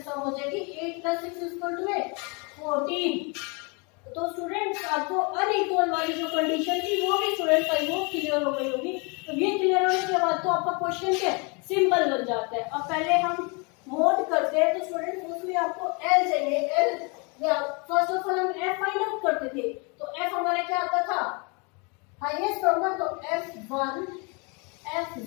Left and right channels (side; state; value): right; quieter; 31.9 dB